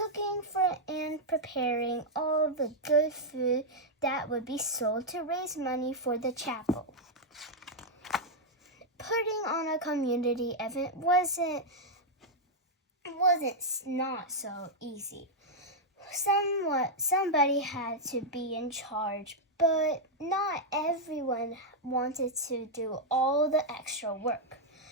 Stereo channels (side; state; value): both; normal; correlation -0.03